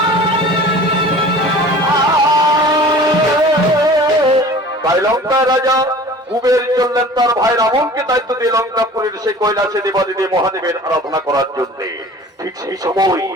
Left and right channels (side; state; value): both; normal; correlation 0.43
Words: তাই লঙ্কা রাজা কুবের চললেন তার ভাই রাবণকে দায়িত্ব দিয়ে লঙ্কাপুরের সেই কৈলাসে দেবাদিদেব মহাদেবের আরাধনা করার জন্য। ঠিক সেই সময়